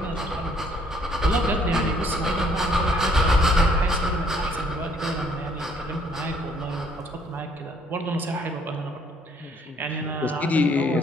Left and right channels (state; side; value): normal; both; correlation 0.64